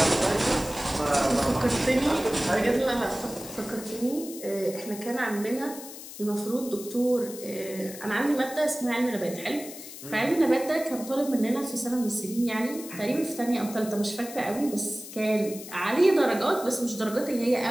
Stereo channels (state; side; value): noise; left; hiss, 13 dB below the sound